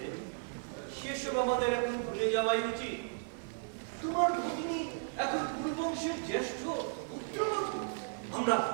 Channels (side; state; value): left; silent; digital silence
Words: সেসব আমাদের এখন ভুলে যাওয়াই উচিত। তোমার ভগিনী এখন কুরুবংশের জ্যেষ্ঠ পুত্রবধূ।